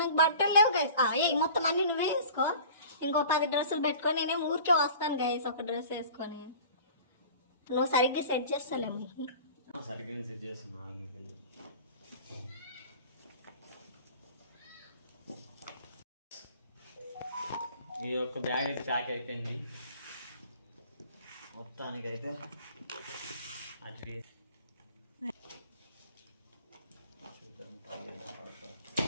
నాకు బట్టలు లేవు గైస్. మొత్తం అన్ని నువ్వే వేసుకో. ఇంకో 10 డ్రెస్సులు పెట్టుకొని నేనేం ఊరికే వస్తాను గైస్ ఒక డ్రెస్ వేసుకొని. నువ్వు సరిగ్గా సెట్ చేస్తాలేము. సరిగ్గా సెట్ చేస్తున్నా. ఈ యొక్క బ్యాగ్ అయితే ప్యాక్ అయిపోయింది మొత్తానికైతే. అట్లీస్ట్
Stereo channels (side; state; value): both; inverted; correlation -0.43